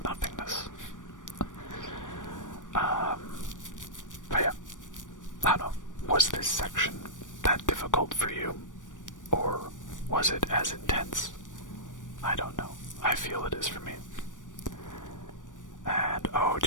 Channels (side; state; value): right; late; 0.87 ms